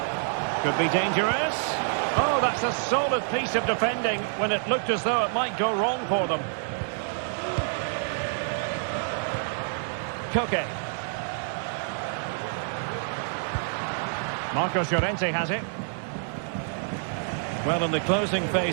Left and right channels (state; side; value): silent; left; digital silence